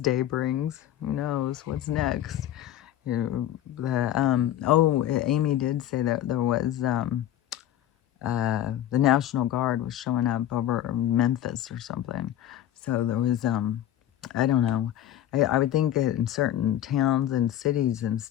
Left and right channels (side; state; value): right; quieter; 12.0 dB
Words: brings. Who knows what's next? Amy did say that there was the National Guard was showing up over Memphis or something. So there was I don't know. I would think that in certain towns and cities and